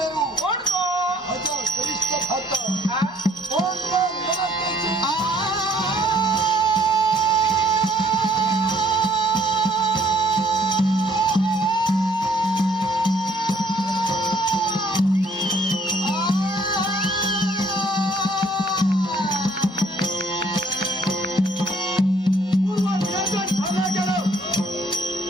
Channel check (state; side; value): normal; both; correlation 0.63